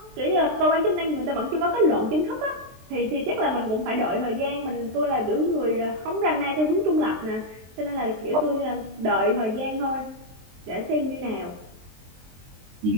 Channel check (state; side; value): late; left; 23 ms